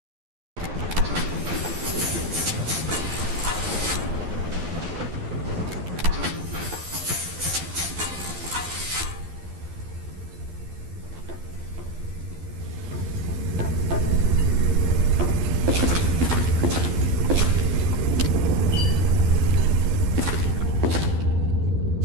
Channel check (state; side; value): late; left; 12 ms